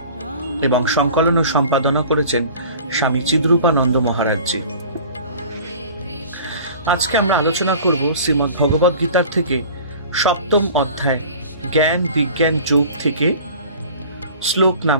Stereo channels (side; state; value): both; inverted; correlation -0.43